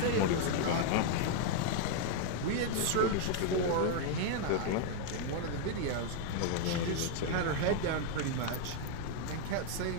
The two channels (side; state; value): both; different; correlation 0.00